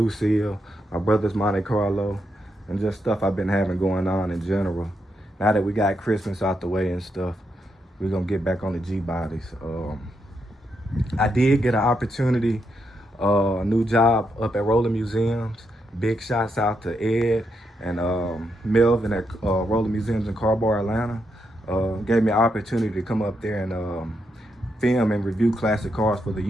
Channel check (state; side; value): normal; both; correlation 0.81